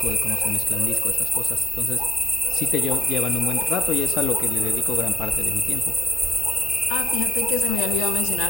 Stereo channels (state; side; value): normal; both; correlation 0.82